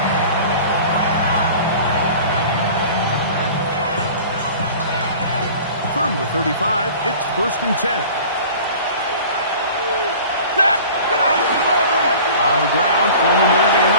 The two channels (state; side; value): inverted; both; correlation -0.43